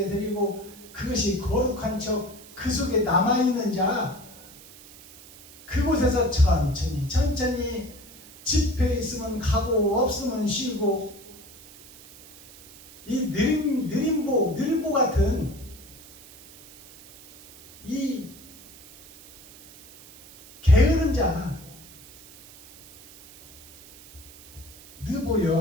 드리고 그것이 거룩한 척 그 속에 남아있는 자, 그곳에서 천천히 집회 있으면 가고 없으면 쉬고, 이 느림보 같은 이 게으른 자,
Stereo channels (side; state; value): right; noise; hiss, 21 dB below the sound